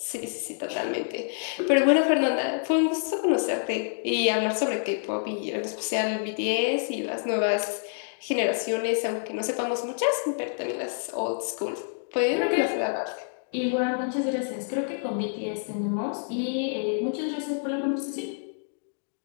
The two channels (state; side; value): silent; right; digital silence